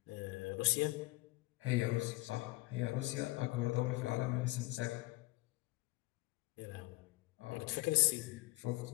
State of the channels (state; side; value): quieter; right; 22.1 dB